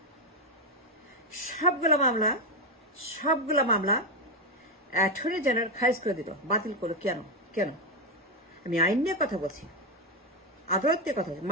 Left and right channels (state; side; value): normal; both; correlation 0.07